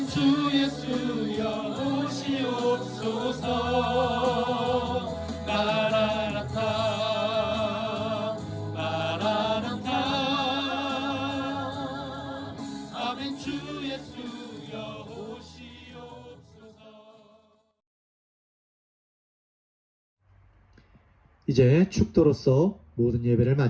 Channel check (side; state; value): both; identical; correlation 1.00